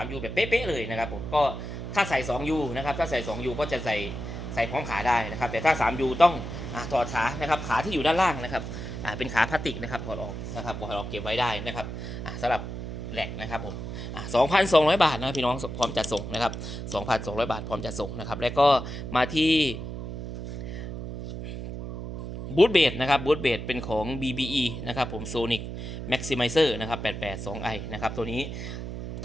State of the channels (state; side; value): noise; right; hum, 7 dB below the sound